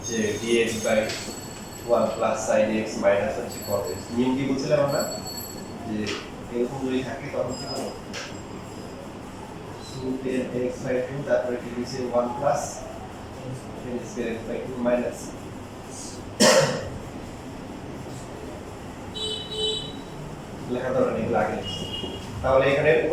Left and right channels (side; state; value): both; identical; correlation 1.00